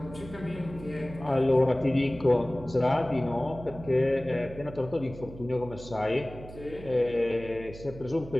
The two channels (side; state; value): right; noise; hum, 15 dB below the sound